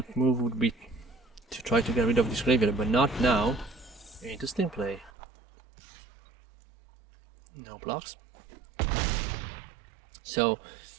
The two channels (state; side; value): drops out; left; at 5.1 s